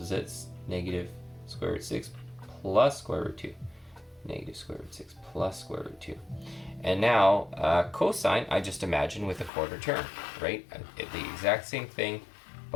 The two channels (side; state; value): right; drops out; at 9.5 s